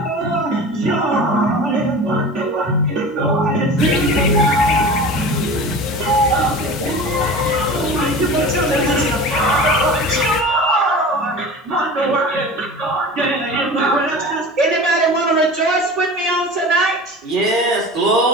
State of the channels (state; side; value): normal; both; correlation 0.35